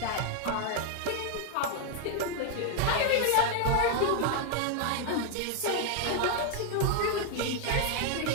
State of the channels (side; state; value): both; different; correlation 0.00